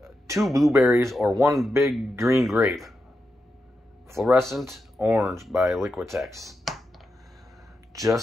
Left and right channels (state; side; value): normal; both; correlation 0.87